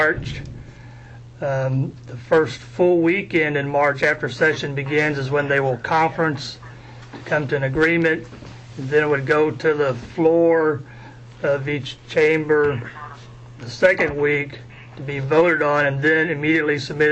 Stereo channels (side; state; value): both; identical; correlation 1.00